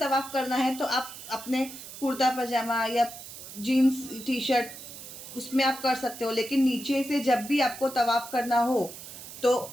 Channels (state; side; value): noise; right; hiss, 13 dB below the sound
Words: करना है तो आप अपने कुर्ता पजामा या जीन्स टी शर्ट उसमें आप कर सकते हो, लेकिन नीचे से जब भी आपको तवाफ़ करना हो तो